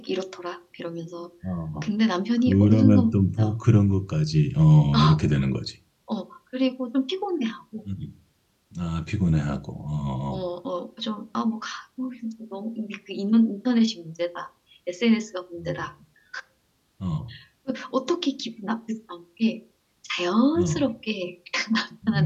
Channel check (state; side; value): identical; both; correlation 1.00